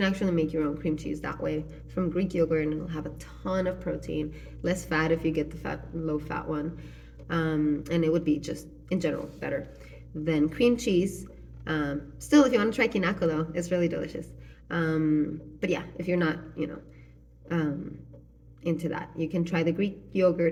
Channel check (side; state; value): both; identical; correlation 1.00